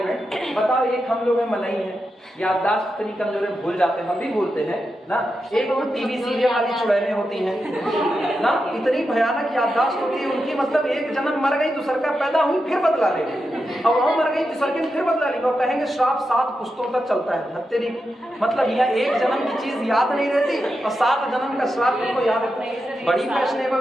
बताओ, एक हम लोग में मलाई है, याददाश्त इतनी कमजोर है, भूल जाते हैं, हम भी भूलते हैं ना। एक वो टीवी सीरियल वाली चुड़ैलें होती हैं ना, इतनी भयानक याददाश्त होती है उनकी, मतलब एक जन्म मर गई, दूसर का पैदा हुई, फिर बदला लेंगे, और वहां मर गई, दूसर के फिर बदला लेंगे, और कहेंगे श्राप 7 पुश्तों तक चलता है। तेरी मतलब यह एक जन्म की चीज याद नहीं रहती और 7 जन्म का श्राप तुमको याद रखना है। बड़ी फैशनेबल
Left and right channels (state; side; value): normal; both; correlation 0.88